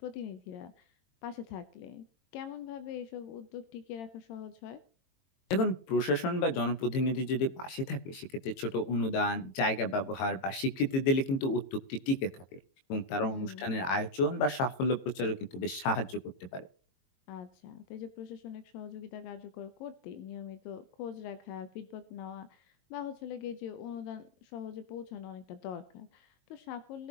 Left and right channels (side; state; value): right; late; 22 ms